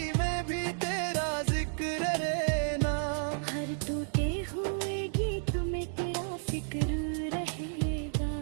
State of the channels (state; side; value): silent; left; digital silence